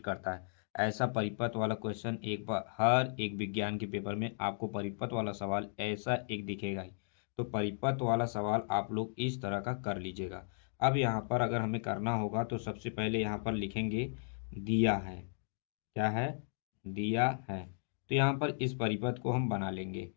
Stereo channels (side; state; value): right; silent; digital silence